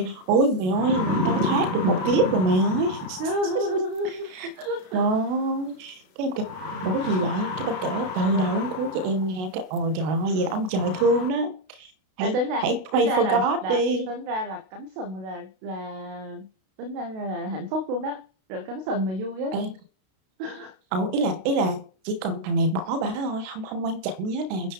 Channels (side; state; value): left; late; 32 ms